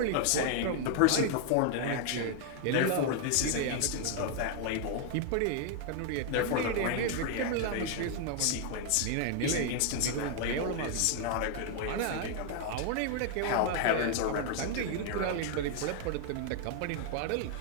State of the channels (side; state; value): both; different; correlation 0.00